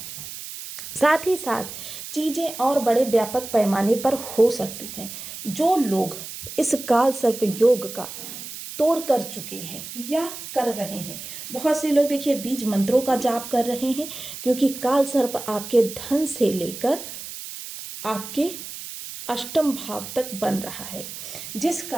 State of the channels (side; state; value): right; noise; hiss, 10 dB below the sound